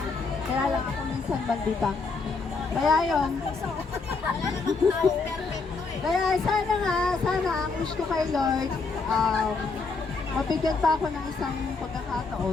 Kaya lang ako minsan bandita. Kaya yun. Kaya sana ang wish ko kay Lord, mabigyan pa ako ng isang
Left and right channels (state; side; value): quieter; right; 4.3 dB